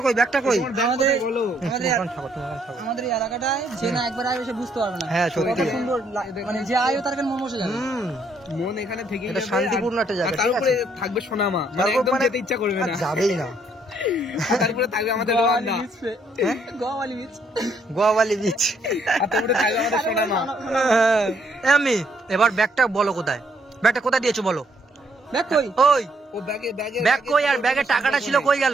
কই আমাদের বলো আমাদের এই এলাকাটায় যে না একবার আয় এসে বুঝতে পারবে না হ্যাঁ সত্যি কত সুন্দর মানে যে আয়ও তার মন বসে যাবে মন এখানে থেকে এটা শান্তিপূর্ণ একটা জায়গা ঠিক তারপরে আছে থাকবে সোনামা মানে তারপর একদম মানে যেতে ইচ্ছা করবে আর না যাবেই না তারপরে থাকবে আমাদের রোয়ান্দা গোয়াওয়ালি বিচ গোয়াওয়ালি বিচ আর তারপরে থাকবে আমাদের সোনামা আমি এবার ব্যাগটা বলো কোথায় দিয়েছো বলো দেখ কই ওই ও ব্যাগে ব্যাগ কই আর ব্যাগের টাকাটা ছিল কই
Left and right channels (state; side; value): normal; both; correlation 0.70